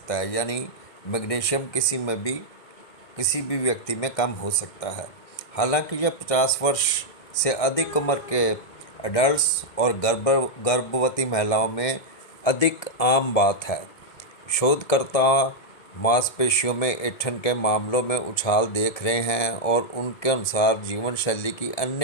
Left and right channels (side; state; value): right; late; 1.7 ms